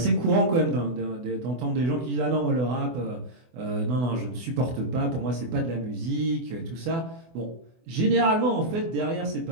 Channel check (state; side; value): late; left; 24 ms